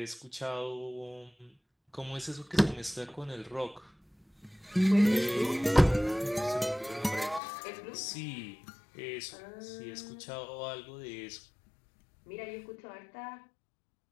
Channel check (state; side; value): drops out; right; at 7.4 s